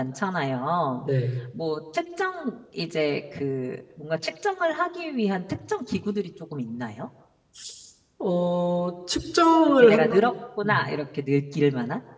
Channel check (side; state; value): both; identical; correlation 1.00